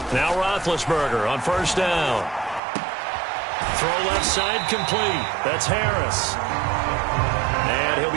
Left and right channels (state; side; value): drops out; left; at 2.6 s